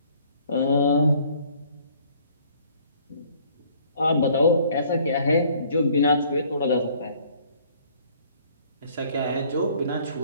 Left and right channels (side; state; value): both; inverted; correlation -0.58